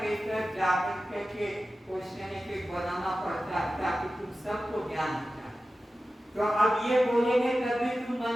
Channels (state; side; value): normal; both; correlation 0.94